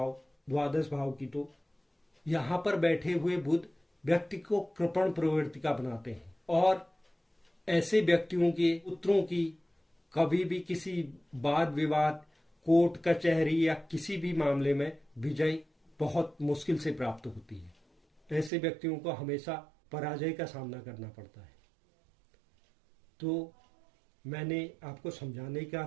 द्वादश भाव की, तो यहाँ पर बैठे हुए बुध व्यक्ति को कृपण प्रवृत्ति का बनाते हैं और ऐसे व्यक्तियों के पुत्रों की कभी भी किसी वाद विवाद, कोर्ट कचहरी या किसी भी मामले में विजय बहुत मुश्किल से प्राप्त होती है। ऐसे व्यक्तियों को हमेशा पराजय का सामना करना पड़ता है। तो मैंने आपको समझाने का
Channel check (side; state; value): left; drops out; at 18.5 s